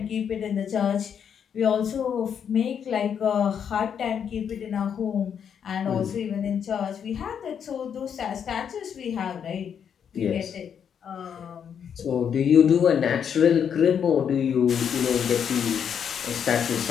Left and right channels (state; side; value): quieter; right; 7.9 dB